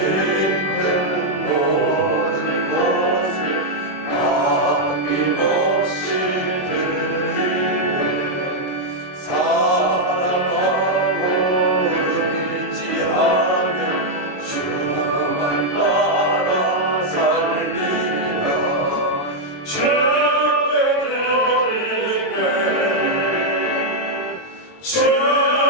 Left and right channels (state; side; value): late; right; 22 ms